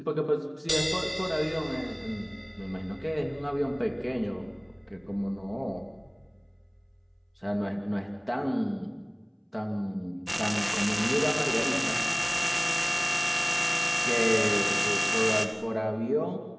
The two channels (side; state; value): both; identical; correlation 1.00